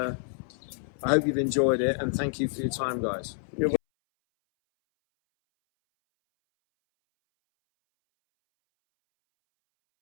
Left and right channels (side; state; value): right; silent; 59 dB below the other